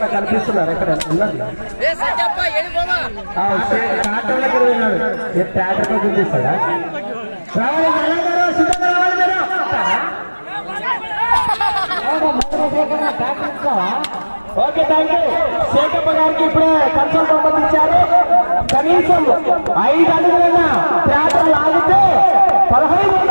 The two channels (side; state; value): both; inverted; correlation -1.00